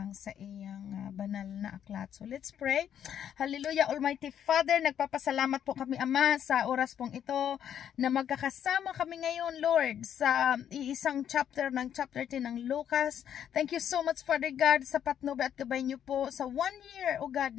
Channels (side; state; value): right; quieter; 9.5 dB